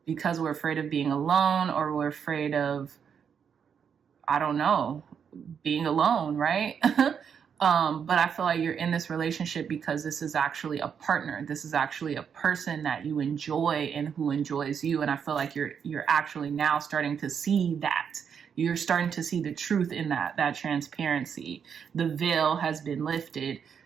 because we're afraid of being alone, or we're afraid of, I don't know, being alone, right? But I feel like you're in this relationship because this is actually a partner. This is actually a person that you enjoy and who enjoys you. And I feel like you're actually now starting to see that. You're starting to see the truth in that transparency. The veil has been lifted.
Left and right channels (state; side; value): quieter; left; 7.3 dB